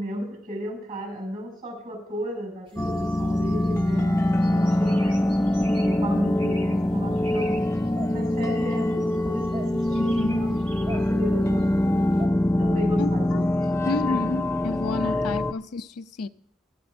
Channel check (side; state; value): both; normal; correlation 0.91